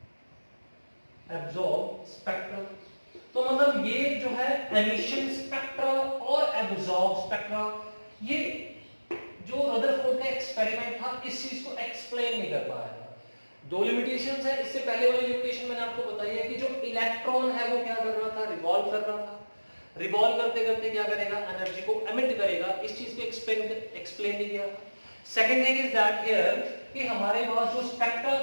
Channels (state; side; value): inverted; both; correlation -1.00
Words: absorb spectrum. तो मतलब ये जो है एमिशन स्पेक्ट्रा और एब्जॉर्ब स्पेक्ट्रा, ये जो रदरफोर्ड का एक्सपेरिमेंट था इस चीज को एक्सप्लेन नहीं कर पाया था। 2 लिमिटेशंस है, इससे पहले वाली लिमिटेशन मैंने आपको बताई है कि जो इलेक्ट्रॉन है वो क्या कर रहा था, रिवॉल्व कर रहा था, रिवॉल्व करते करते क्या करेगा, एनर्जी को एमिट करेगा, इस चीज को एक्सप्लेन नहीं किया। Second thing is that here कि हमारे पास जो स्पेक्ट्रा